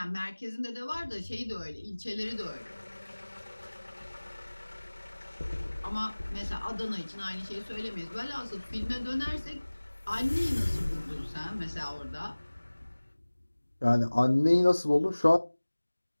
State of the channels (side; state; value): both; inverted; correlation -1.00